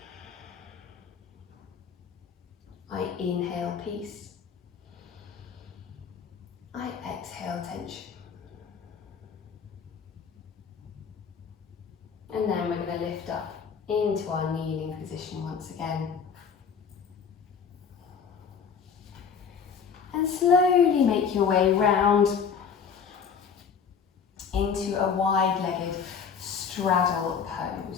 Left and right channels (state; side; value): quieter; right; 6.5 dB